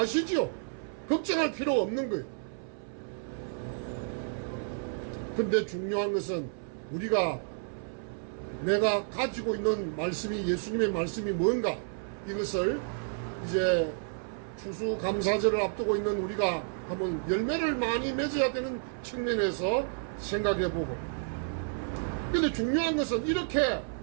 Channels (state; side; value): silent; left; 57 dB below the other